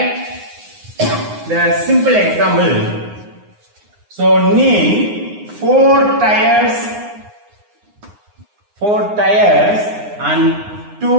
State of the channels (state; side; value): late; left; 9.7 ms